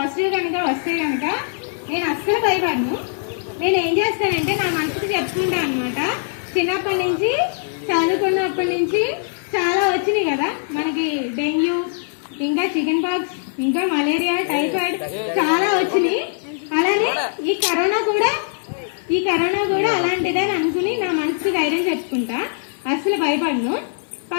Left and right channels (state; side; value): silent; right; digital silence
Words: కనుక వస్తే కనుక నేను అస్సలు భయపడను. నేను ఏం చేస్తానంటే నా మనసుకు చెప్పుకుంటాను అనమాట. చిన్నప్పటి నుంచి చదువుకున్నప్పటి నుంచి చాలా వచ్చినాయి కదా మనకి, డెంగ్యూ, ఇంకా చికెన్ పాక్స్, ఇంకా మలేరియా, టైఫాయిడ్ చాలా వచ్చినాయి. అలానే ఈ కరోనా కూడా అలాంటిదని అనుకుని నా మనసుకు ధైర్యం చెప్పుకుంటా. అస్సలు భయపడను.